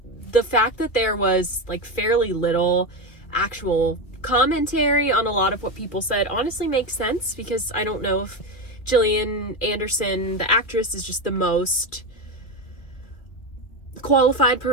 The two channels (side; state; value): right; late; 2.5 ms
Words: the fact that there was fairly little actual commentary on a lot of what people said honestly makes sense, because I don't know if Gillian Anderson, the actress, is just the most qualified